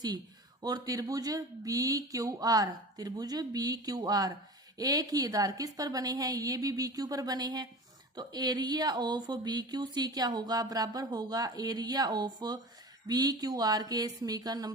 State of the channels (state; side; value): normal; both; correlation 0.35